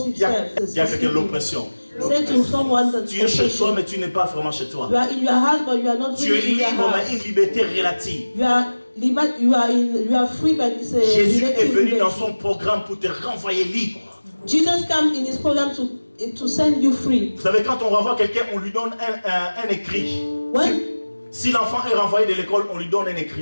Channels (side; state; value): both; inverted; correlation -1.00